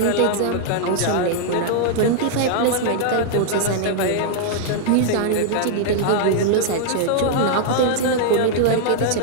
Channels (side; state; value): both; different; correlation -0.01